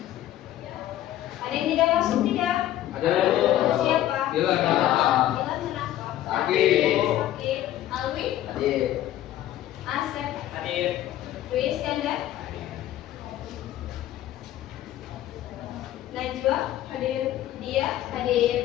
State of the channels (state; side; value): quieter; right; 13.1 dB